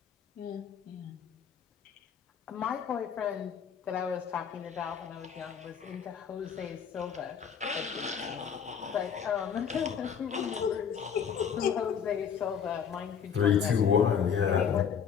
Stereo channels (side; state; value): right; quieter; 7.4 dB